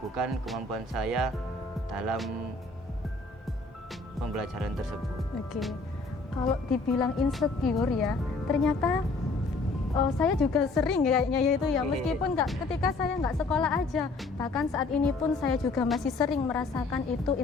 kemampuan saya dalam pembelajaran tersebut. Oke, kalau dibilang insecure ya, ternyata saya juga sering kayaknya ya itu ya, meskipun ketika saya nggak sekolah aja, bahkan saat ini pun saya juga masih sering merasakan itu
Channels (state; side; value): quieter; right; 3.5 dB